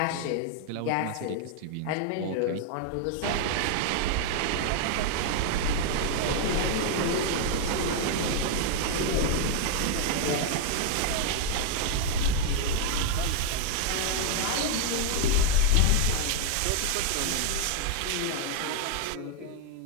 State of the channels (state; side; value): different; both; correlation 0.00